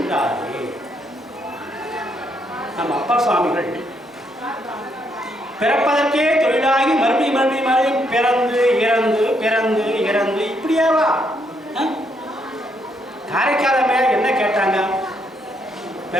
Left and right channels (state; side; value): normal; both; correlation 0.74